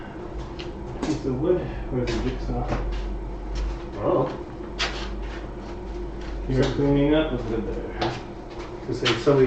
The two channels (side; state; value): both; identical; correlation 1.00